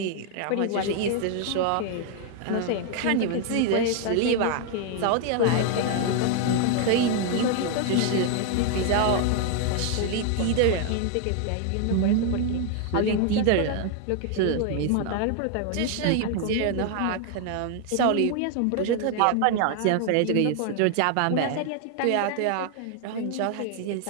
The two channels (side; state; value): both; different; correlation 0.00